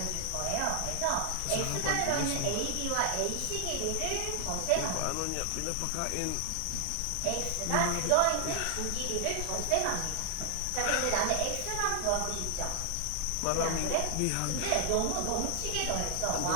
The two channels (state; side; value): different; both; correlation 0.00